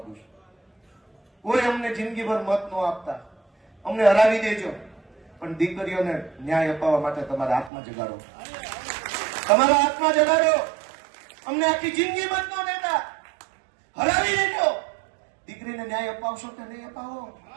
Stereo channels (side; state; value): left; drops out; at 7.7 s